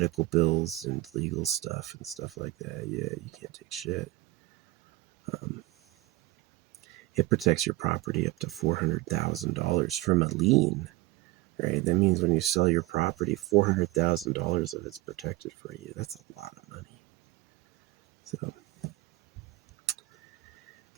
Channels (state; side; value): quieter; left; 19.2 dB